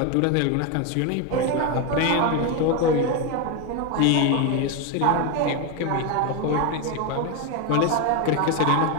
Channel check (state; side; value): different; both; correlation 0.02